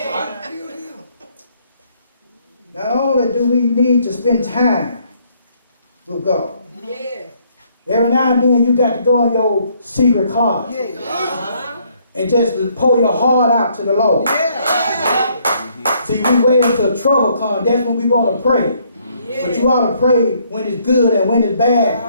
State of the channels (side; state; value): both; inverted; correlation -0.67